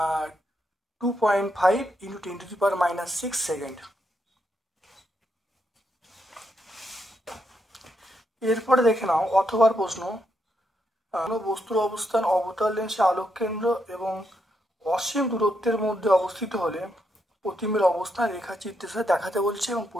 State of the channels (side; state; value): both; normal; correlation 0.80